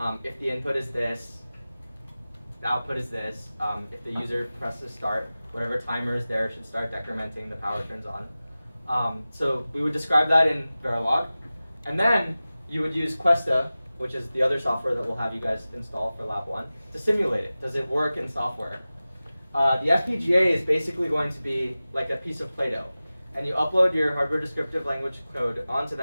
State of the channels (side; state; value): both; inverted; correlation -0.96